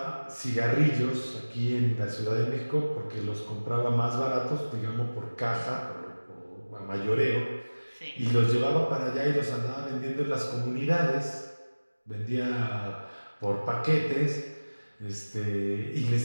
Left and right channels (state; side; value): inverted; both; correlation -1.00